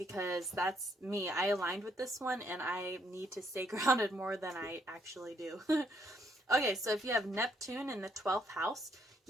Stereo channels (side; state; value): both; normal; correlation 0.71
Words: that's me. I aligned with this one, and I need to stay grounded more than I actually do. Okay, so if you have Neptune in the 12th house,